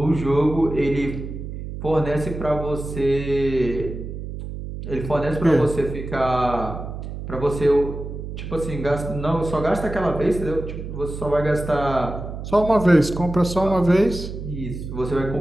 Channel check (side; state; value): right; noise; hum, 8 dB below the sound